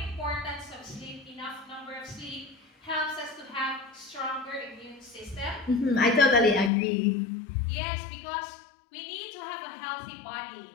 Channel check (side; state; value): right; drops out; at 6.7 s